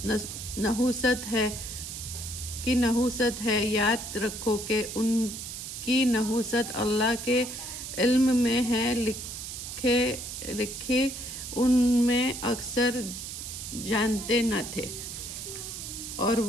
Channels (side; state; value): right; noise; hiss, 8 dB below the sound